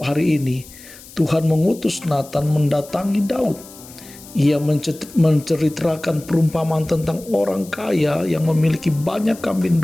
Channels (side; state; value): left; noise; hiss, 19 dB below the sound